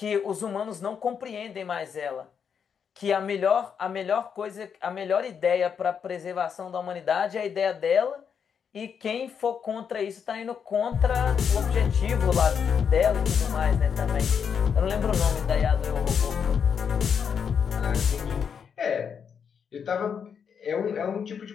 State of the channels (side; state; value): right; quieter; 7.1 dB